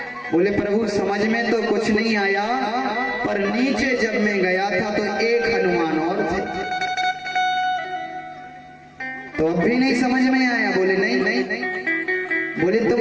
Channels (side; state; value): both; identical; correlation 1.00